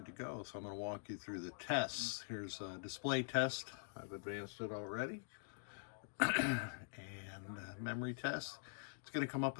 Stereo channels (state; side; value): silent; right; digital silence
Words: to go. So I'm going to walk you through the tests. Here's a display test. I've advanced it already. And memory test. It's going to come up